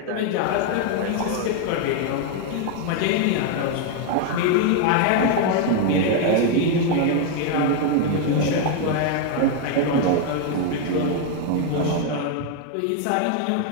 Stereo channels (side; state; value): both; different; correlation 0.01